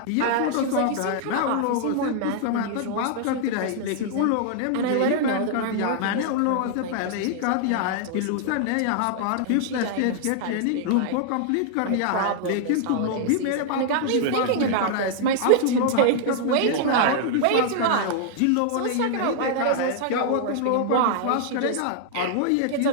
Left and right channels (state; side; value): different; both; correlation -0.01